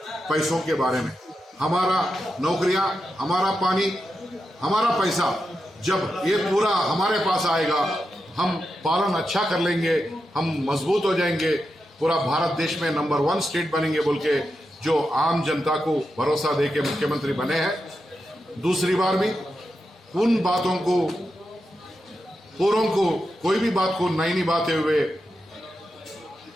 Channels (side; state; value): both; normal; correlation 0.88